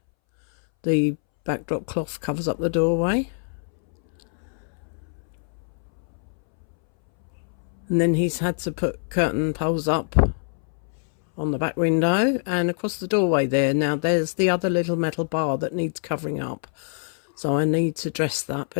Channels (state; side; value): silent; right; 62 dB below the other